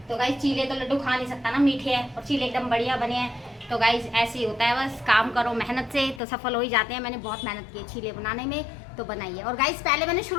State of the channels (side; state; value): right; drops out; at 6.2 s